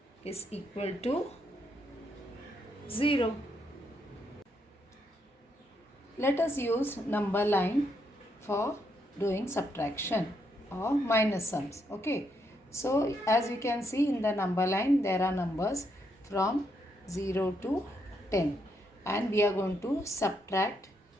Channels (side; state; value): both; normal; correlation 0.77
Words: is equal to 0. Let us use number line for doing subtraction or minus sums. Okay. So as you can see in the number line, there are numbers from 0 to 10 and we are going to subtract